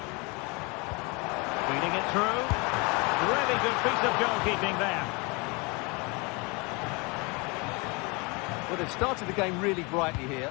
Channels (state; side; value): quieter; right; 28.6 dB